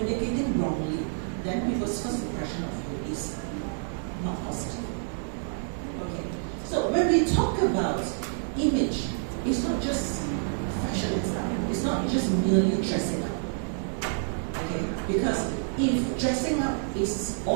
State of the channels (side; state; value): left; silent; digital silence